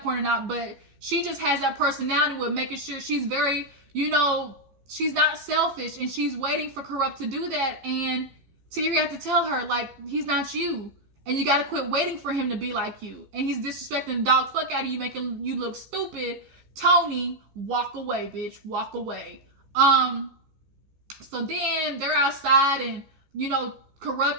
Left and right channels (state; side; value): late; left; 15 ms